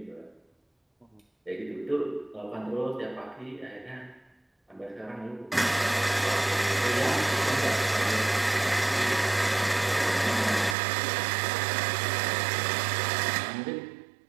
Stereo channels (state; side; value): drops out; left; at 10.8 s